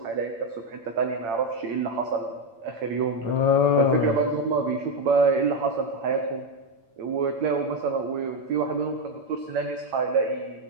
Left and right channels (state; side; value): late; left; 8.8 ms